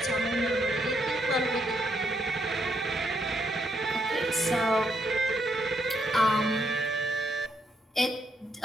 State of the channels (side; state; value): both; normal; correlation 0.76